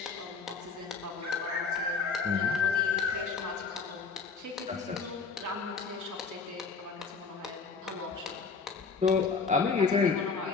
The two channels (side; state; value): right; quieter; 5.0 dB